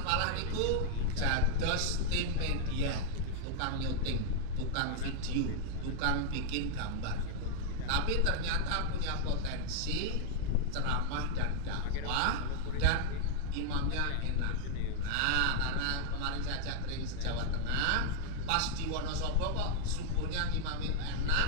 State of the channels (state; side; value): different; both; correlation -0.01